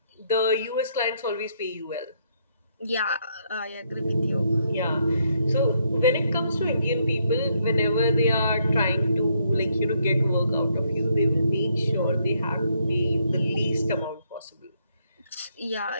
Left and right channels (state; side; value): inverted; both; correlation -0.74